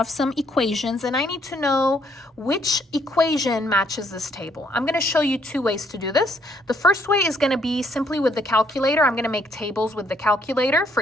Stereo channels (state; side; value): normal; both; correlation 0.69